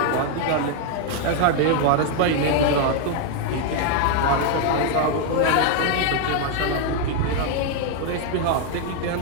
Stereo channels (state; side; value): different; both; correlation 0.01